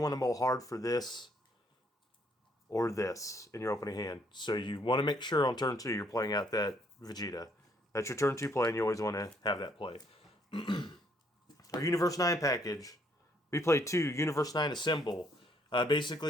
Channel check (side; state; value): both; normal; correlation 0.68